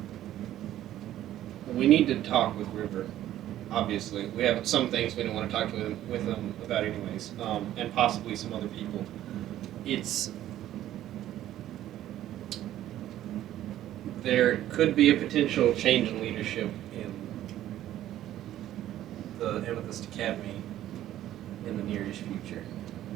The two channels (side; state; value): left; quieter; 12.9 dB